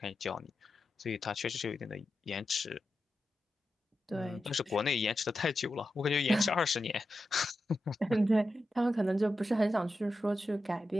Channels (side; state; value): both; normal; correlation 0.90